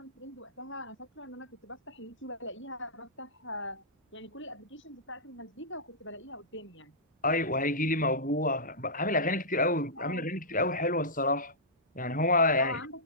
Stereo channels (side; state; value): both; normal; correlation -0.15